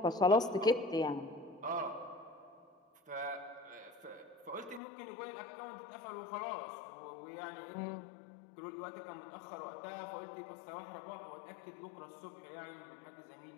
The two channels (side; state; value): right; drops out; at 4.8 s